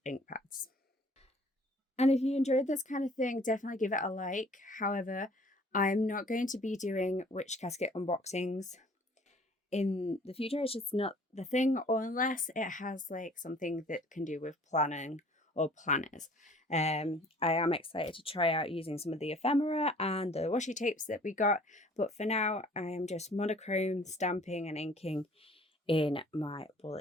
ink pads. And if you enjoyed this kind of thing, definitely give it a like. However, I'm not going to be doing Witch Casket unboxings in the future. It's just not the thing, or unless it has like something that can do with planning or planners. I am excited to try out using some of the ephemera and the washi tapes that we got, but for now I am just monochrome stamping and inking in my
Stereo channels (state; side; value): normal; both; correlation 0.53